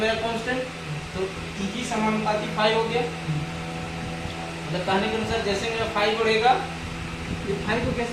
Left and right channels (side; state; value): both; identical; correlation 1.00